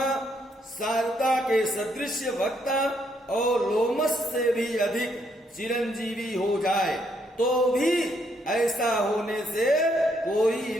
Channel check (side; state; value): both; normal; correlation 0.73